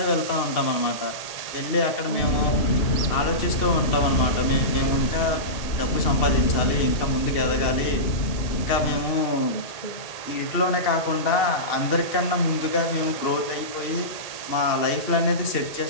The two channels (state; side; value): late; right; 2.7 ms